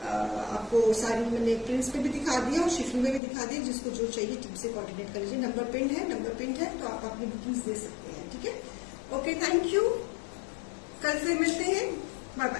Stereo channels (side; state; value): right; drops out; at 3.2 s